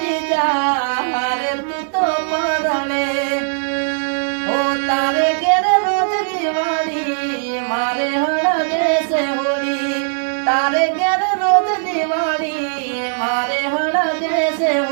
મારે તું તો પરણે, હો તારે ઘેર રોજ દિવાળી મારે હળગે છે હોળી, તારે ઘેર રોજ દિવાળી મારે હળગે છે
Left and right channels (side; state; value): left; silent; digital silence